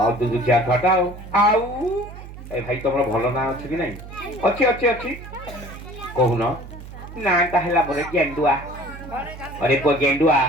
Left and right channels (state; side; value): noise; right; hum, 14 dB below the sound